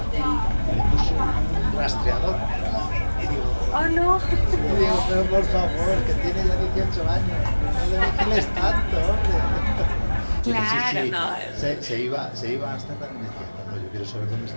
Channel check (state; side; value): inverted; both; correlation -1.00